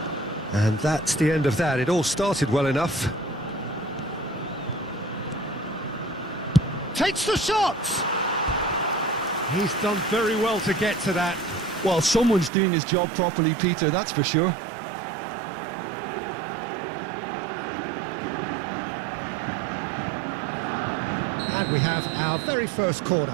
And that's the end of that. It all started well enough. Takes the shot! He's done very well to get to that. Well, someone's doing his job properly, Peter, that's for sure. And we have our very first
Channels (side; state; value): left; drops out; at 12.5 s